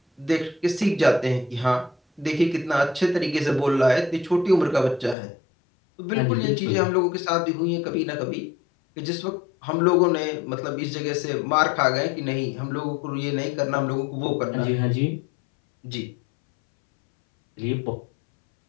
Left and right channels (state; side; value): drops out; right; at 5.2 s